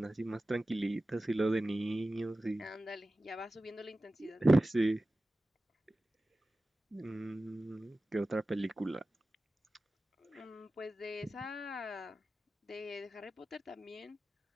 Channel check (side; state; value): both; normal; correlation 0.95